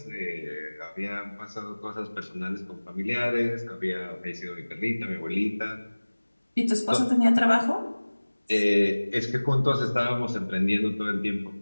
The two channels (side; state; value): both; inverted; correlation -1.00